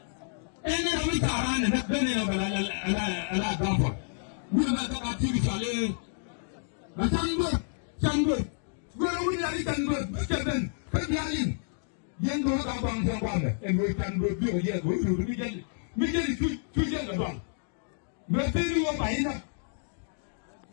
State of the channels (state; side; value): silent; right; digital silence